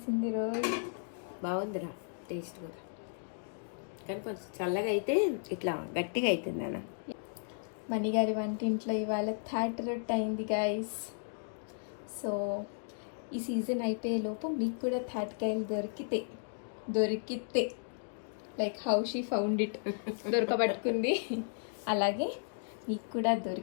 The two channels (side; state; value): right; silent; digital silence